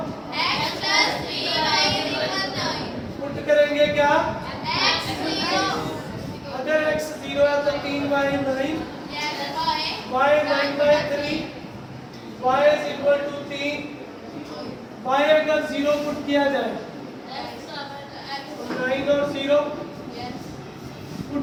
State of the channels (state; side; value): identical; both; correlation 1.00